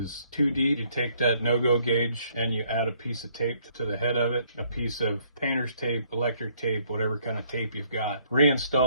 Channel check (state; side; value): inverted; both; correlation -0.66